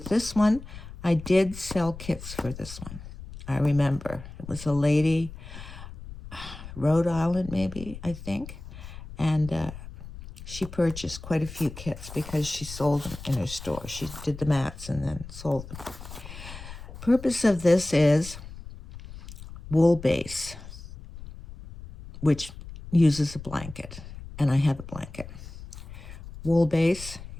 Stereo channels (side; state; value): left; noise; rumble, 13 dB below the sound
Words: this one, I did sell kits for this one. I remember. It was a lady, Rhode Island maybe, I think. And she purchased quite a few kits because she sold them in her store. She did the mats and then sold them. Purpose of this is wool base, which uses a blanket, and I have a blanket. Wool base